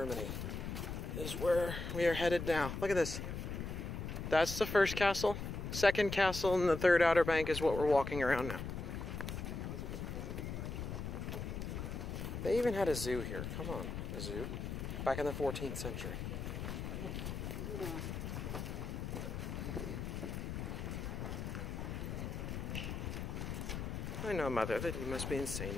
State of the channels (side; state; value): left; noise; rumble, 5 dB below the sound